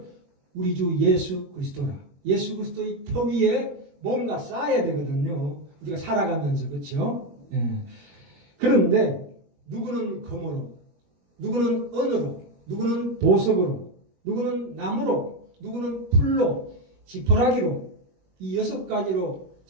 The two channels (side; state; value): left; late; 21 ms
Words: 우리 주 예수 그리스도라. 예수 그리스도의 터 위에 뭔가 쌓아야 되거든요. 우리가 살아가면서. 그렇죠? 예. 그런데 누구는 금으로, 누구는 은으로, 누구는 보석으로, 누구는 나무로, 누구는 풀로, 지푸라기로 이 6가지로